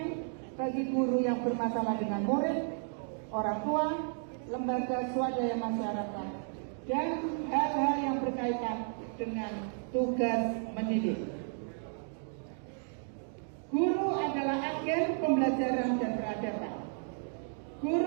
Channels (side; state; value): left; silent; 56 dB below the other